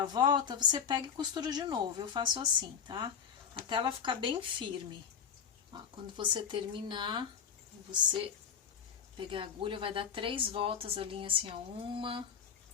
a volta, você pega e costura de novo. Eu faço assim, tá? Até ela ficar bem firme. Ó, quando você terminar, você pegar a agulha, vai dar 3 voltas a linha assim, ó. 1,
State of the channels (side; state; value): right; quieter; 7.2 dB